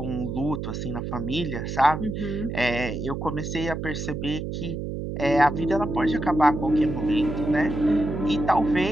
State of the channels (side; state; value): right; noise; hum, 5 dB below the sound